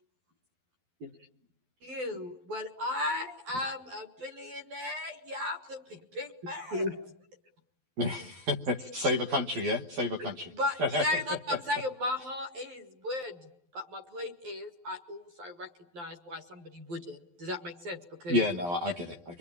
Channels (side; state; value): left; late; 12 ms